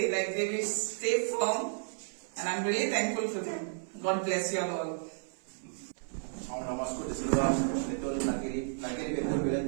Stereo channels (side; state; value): left; silent; 56 dB below the other